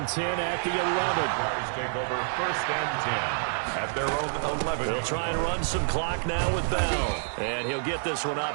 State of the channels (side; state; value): left; silent; 59 dB below the other